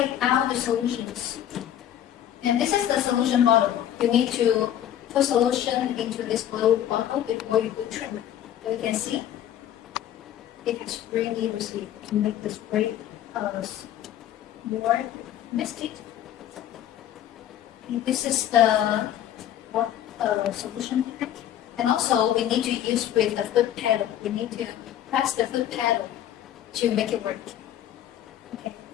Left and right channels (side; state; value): right; quieter; 11.1 dB